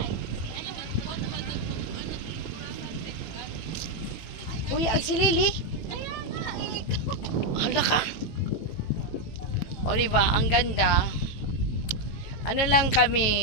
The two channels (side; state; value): right; late; 18 ms